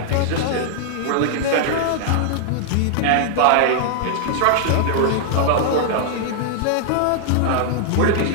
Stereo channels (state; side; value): different; both; correlation 0.00